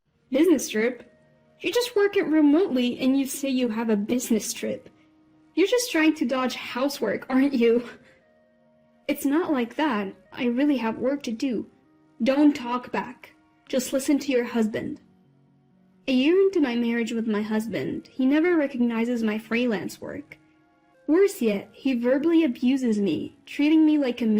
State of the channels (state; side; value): identical; both; correlation 1.00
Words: Business trip? You just work it remotely and you say you have a business trip. You're just trying to dodge housework, aren't you? It's not like that. I really have work to do. Don't talk back. Just listen to your husband. A year into my marriage with my husband, he never recognizes my freelance work. Worse yet, he verbally abuses me, treating me like a